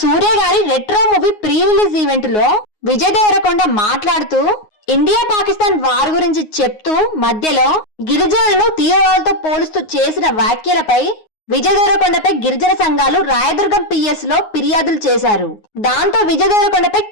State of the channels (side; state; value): right; late; 9.5 ms